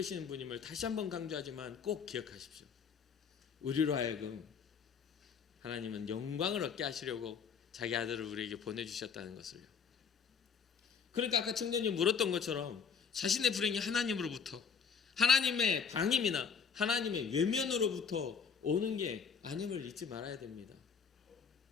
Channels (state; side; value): quieter; right; 6.3 dB